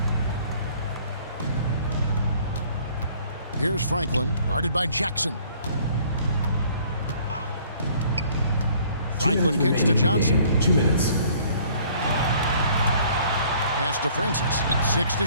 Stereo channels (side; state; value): both; inverted; correlation -0.57